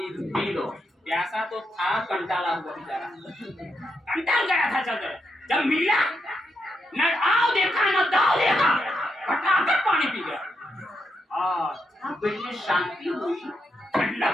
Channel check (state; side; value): normal; both; correlation 0.82